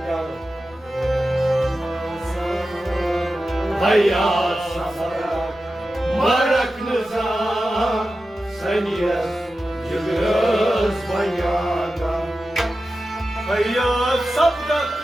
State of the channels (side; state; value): left; noise; rumble, 27 dB below the sound